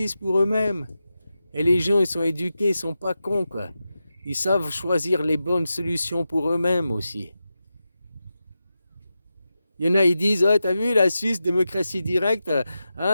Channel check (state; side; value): inverted; both; correlation -0.91